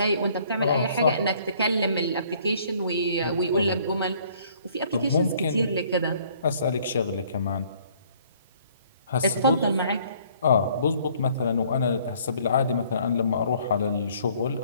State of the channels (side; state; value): both; inverted; correlation -0.60